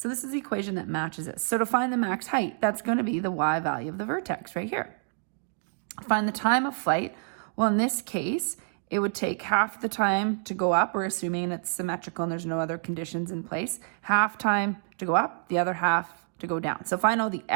this is the equation that matches it. So to find the max height, that's going to be the y value of the vertex right here. Find the time of flight. Well, in this case, it would take half the time to go up. We're assuming it's symmetrical and there's no other conditions in place. Half time to go up, the other half to go down. So if I know the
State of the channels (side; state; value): left; silent; 59 dB below the other